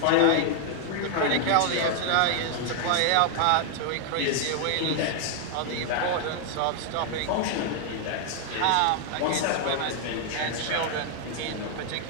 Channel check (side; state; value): both; different; correlation 0.00